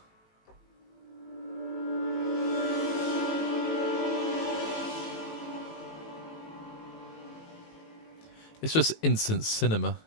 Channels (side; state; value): right; late; 18 ms